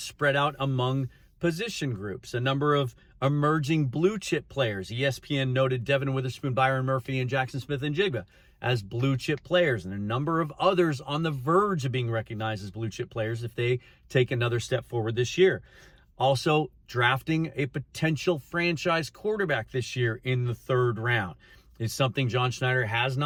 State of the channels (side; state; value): both; identical; correlation 1.00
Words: out among position groups. A number of emerging blue chip players. ESPN noted Devin Witherspoon, Byron Murphy, and Jackson Smith-Njigba as blue chip players. And a number of others on the verge of being recognized as blue chip players if they take another step forward this year. Also, drafting a potential franchise quarterback this year in the 3rd round is something John Schneider has